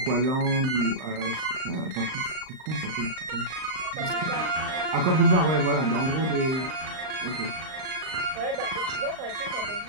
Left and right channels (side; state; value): left; late; 38 ms